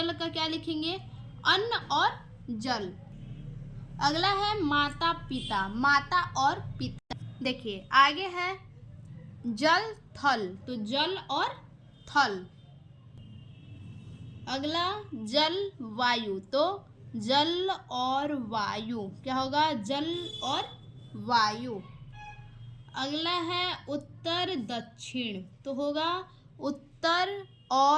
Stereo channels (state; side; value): identical; both; correlation 1.00